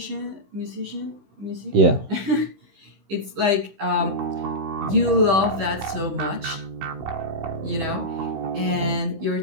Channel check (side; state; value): left; late; 15 ms